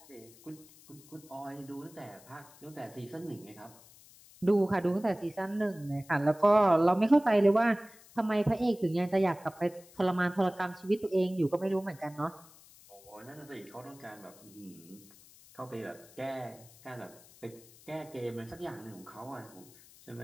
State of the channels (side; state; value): left; noise; hiss, 23 dB below the sound